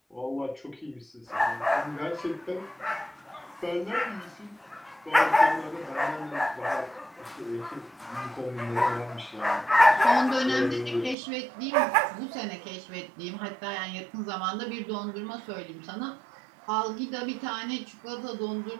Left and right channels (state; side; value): drops out; left; at 11.2 s